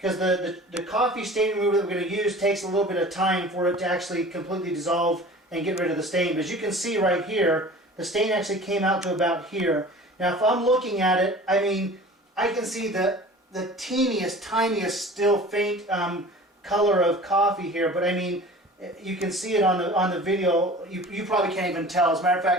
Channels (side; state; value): both; normal; correlation 0.41